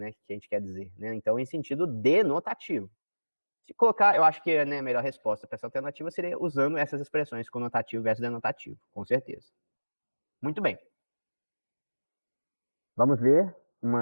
que a gente quer dizer, né? Então, em sentido denotativo. Se colocar, eu acho que, né, a melhor resposta para essa alternativa seria usando essas expressões conotativo versus denotativo, com certeza. Muito bem. Vamos ver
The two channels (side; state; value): both; inverted; correlation -1.00